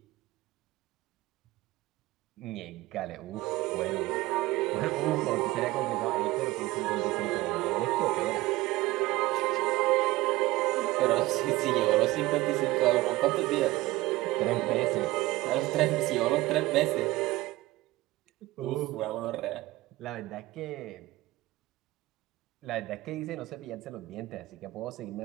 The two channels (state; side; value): quieter; left; 18.6 dB